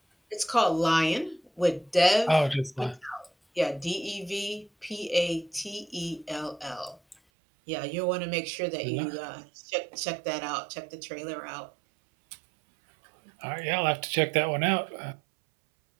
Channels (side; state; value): left; drops out; at 7.2 s